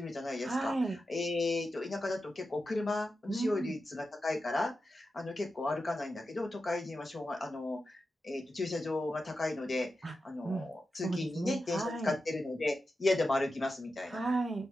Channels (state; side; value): normal; both; correlation 0.90